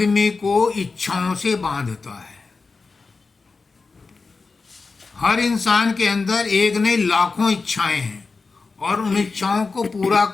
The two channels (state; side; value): quieter; right; 4.2 dB